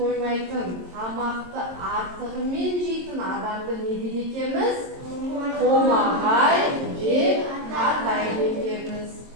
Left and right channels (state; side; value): late; left; 22 ms